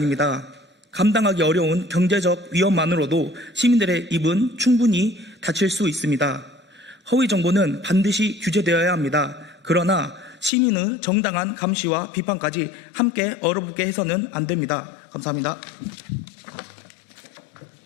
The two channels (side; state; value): right; drops out; at 10.5 s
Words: 감당하기 어려운 경제적 위험만으로도 시민들의 입은 충분히 닫힐 수 있습니다. 허위 정보는 반드시 규제되어야 합니다. 그러나 시민의 정당한 감시와 비판까지 함께 얼어붙게 해서는 안 됩니다. 감사합니다.